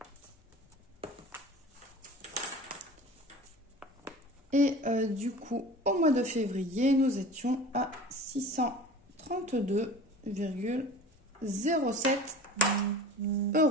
Et du coup, au mois de février, nous étions à 632,07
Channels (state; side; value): normal; both; correlation 0.39